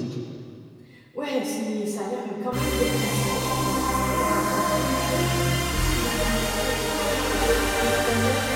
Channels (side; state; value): both; identical; correlation 1.00